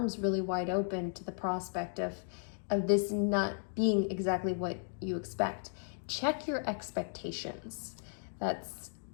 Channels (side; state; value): right; silent; digital silence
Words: really wide open to the prospect of this not being exactly what you expect. Check your expectations. That's